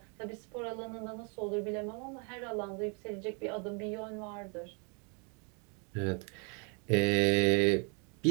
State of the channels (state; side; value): quieter; left; 35.5 dB